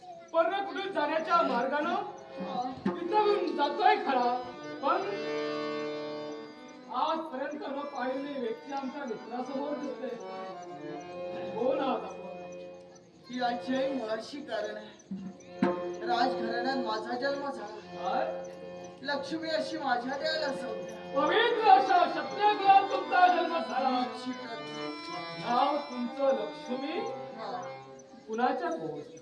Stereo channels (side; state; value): both; identical; correlation 1.00